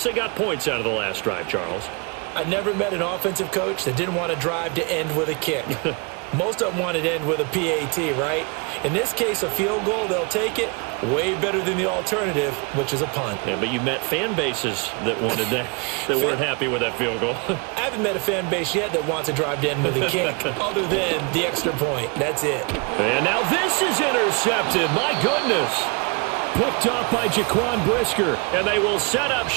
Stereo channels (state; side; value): quieter; left; 32.1 dB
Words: they got points out of the last drive, Charles. I never met an offensive coach that didn't want a drive to end with a kick. Most of them wanted to end with a PAT, right? In this case, a field goal, they'll take it. Way better than the alternative, which is a punt. Yeah, but you met fan bases that wanted that, that weren't happy with that field goal. I haven't met a fan base yet that wants a drive to end with a kick, other than the extra point. That's it. And now this is intercepted. My goodness. Picked off by Jaquan Brisker. And they will set up